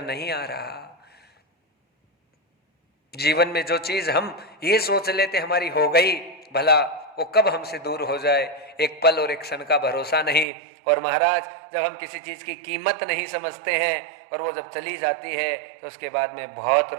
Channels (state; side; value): drops out; left; at 10.5 s